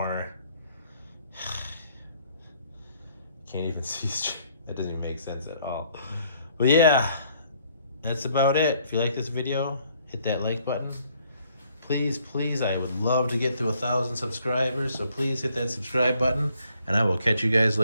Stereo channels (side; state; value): both; inverted; correlation -0.65